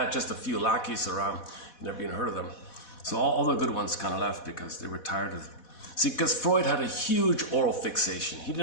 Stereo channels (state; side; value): late; right; 4.1 ms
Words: just a few lackeys around. You never even heard of them. So all the good ones kind of left because they were tired of it. See, because Freud had a huge oral fixation. He